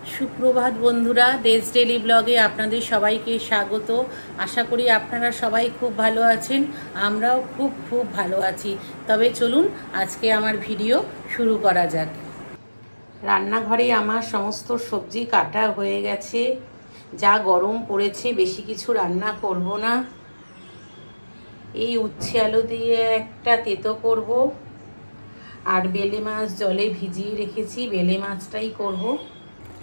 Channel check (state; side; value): inverted; both; correlation -1.00